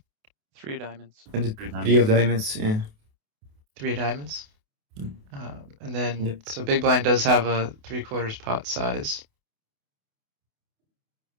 3 of diamonds. And the Three three of diamonds, yeah. 3 of diamonds. Mm. And then, Yep. so big blind does have a 3/4 pot size.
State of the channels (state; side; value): late; left; 28 ms